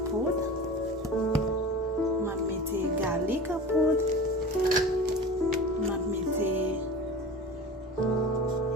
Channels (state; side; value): normal; both; correlation 0.35